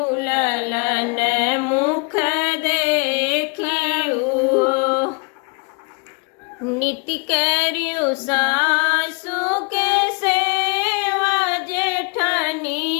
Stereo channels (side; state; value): right; quieter; 32.8 dB